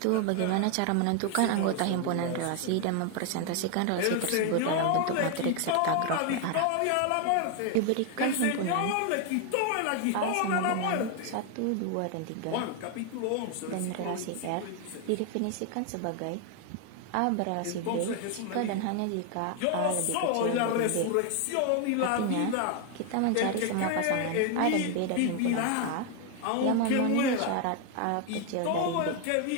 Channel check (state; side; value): different; both; correlation 0.01